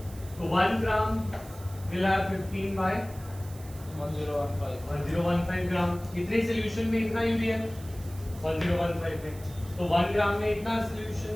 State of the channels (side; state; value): right; noise; hiss, 20 dB below the sound